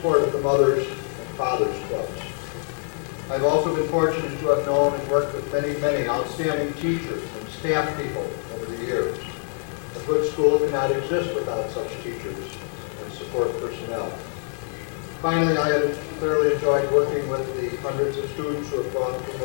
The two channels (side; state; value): right; silent; 60 dB below the other